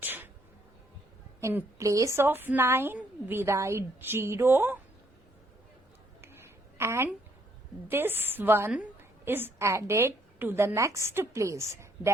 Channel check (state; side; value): normal; both; correlation 0.69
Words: in place of 9, we write 0, and this one is added to the next place,